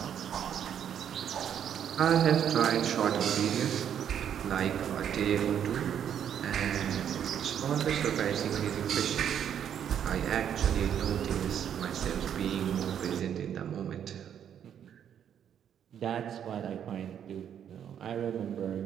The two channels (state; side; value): quieter; left; 9.1 dB